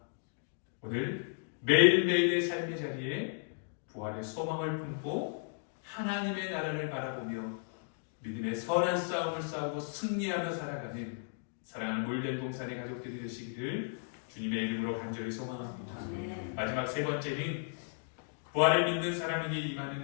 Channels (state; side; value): silent; right; digital silence